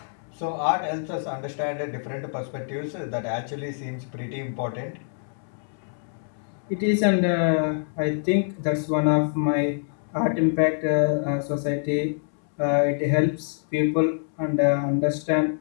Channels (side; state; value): right; silent; digital silence